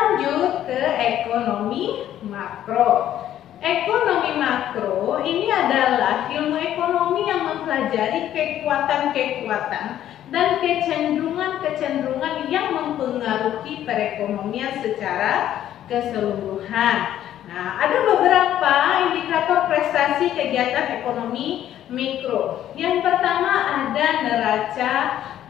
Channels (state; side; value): quieter; right; 11.6 dB